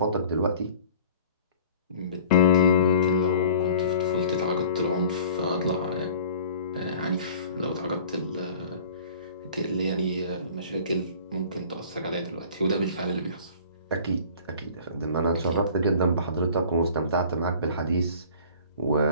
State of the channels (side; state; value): both; inverted; correlation -0.46